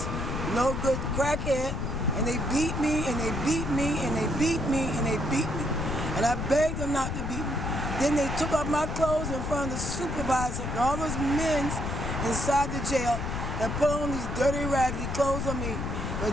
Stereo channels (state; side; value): noise; left; rumble, 3 dB below the sound